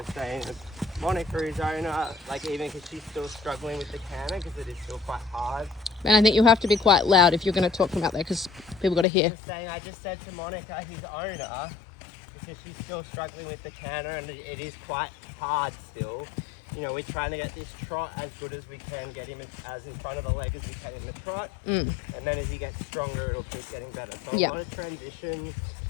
saying Monica is owner, even because she's still struggling with the canter because it is still quite hard. And I think you'll have to be quite loud if you're going to talk from out there because people got to hear. I just said to Monica, his owner, because she's still struggling with the canter and it is quite hard still. We're trying to get this trot as good as we can, get him as in front of the leg as we can in the trot. And then as he gets stronger, it'll keep getting better. So a lot of transitions.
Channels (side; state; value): right; drops out; at 9.1 s